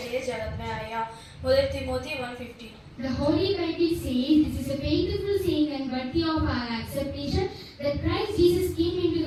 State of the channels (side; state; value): both; identical; correlation 1.00